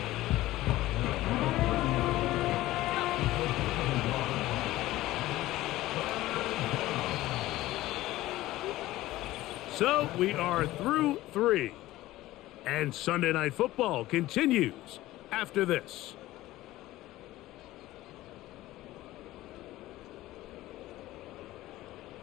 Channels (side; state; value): right; quieter; 16.5 dB